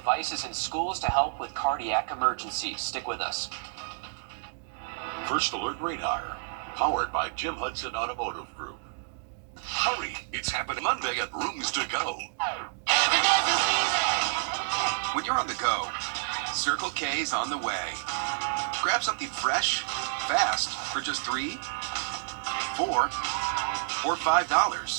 in schools to help with cardiac emergencies. Stick with us. First Alert Radar, powered by Jim Hudson Automotive Group. Hurry, it's happening Monday at Rooms to Go. When you're on the go, Circle K's on the way. Grab something fresh, fast, for just $3, $4, or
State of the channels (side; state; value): left; silent; digital silence